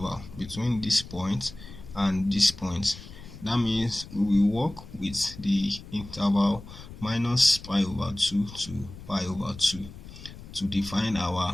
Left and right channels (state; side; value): noise; left; rumble, 15 dB below the sound